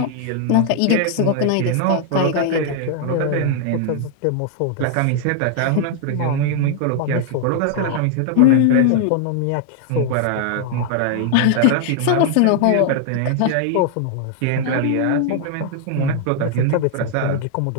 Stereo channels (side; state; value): both; different; correlation 0.00